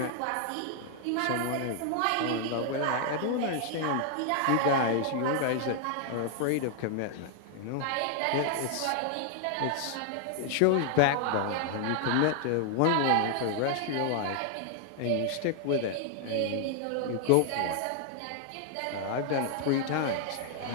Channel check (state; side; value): different; both; correlation 0.00